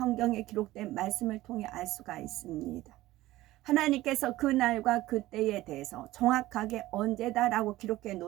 기록된 말씀을 통해 알 수가 있습니다. 하나님께서 그날과 그때에 대해서 정확하게 언제다라고 기록해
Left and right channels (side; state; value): left; quieter; 16.8 dB